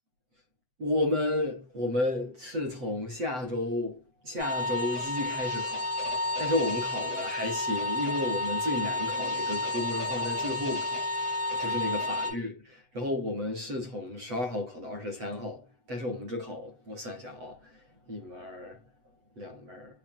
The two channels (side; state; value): left; late; 7.9 ms